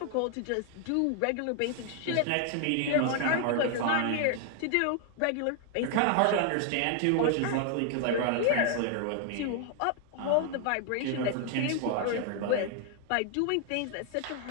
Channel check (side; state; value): both; different; correlation 0.00